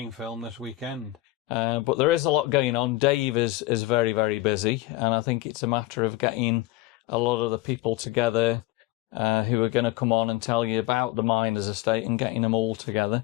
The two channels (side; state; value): right; quieter; 17.9 dB